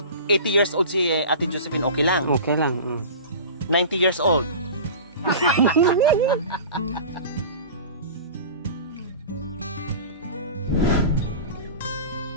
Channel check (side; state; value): both; inverted; correlation -0.35